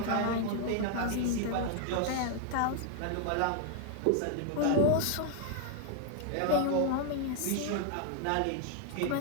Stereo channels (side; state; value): both; different; correlation 0.00